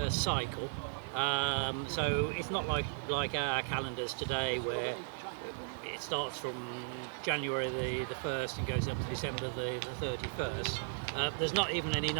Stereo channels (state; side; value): silent; left; digital silence